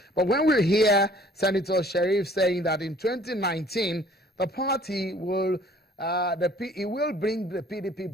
But when we hear Senator Sharif saying that in 2019, the party will, he will bring the PDP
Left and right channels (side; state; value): both; normal; correlation 0.55